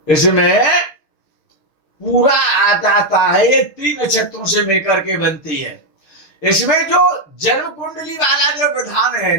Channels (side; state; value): right; late; 6.7 ms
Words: इसमें पूरा आ जाता है, ये 3 नक्षत्रों से मिलकर के बनती है। इसमें जो जन्म कुंडली वाला जो विधान है